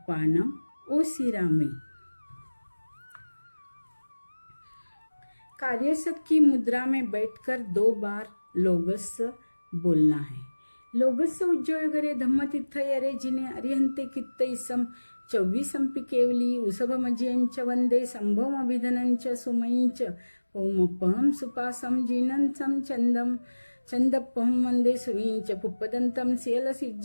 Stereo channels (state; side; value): inverted; both; correlation -1.00